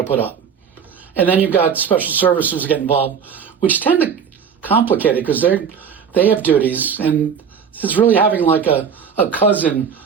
to put up? And then you've got special services that get involved, which tend to complicate it because they have duties, and it's really having like a cousin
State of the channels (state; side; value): quieter; left; 7.0 dB